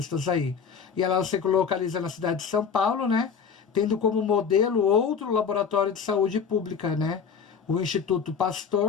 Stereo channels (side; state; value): right; quieter; 6.4 dB